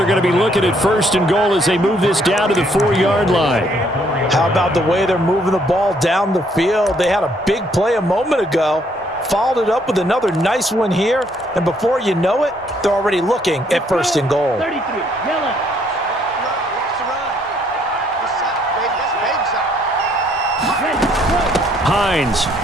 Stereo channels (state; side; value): normal; both; correlation 0.67